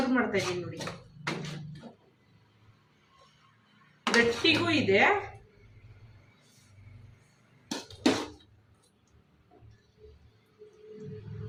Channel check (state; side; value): identical; both; correlation 1.00